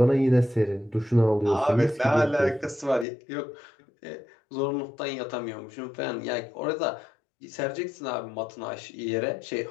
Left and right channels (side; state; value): right; drops out; at 3.1 s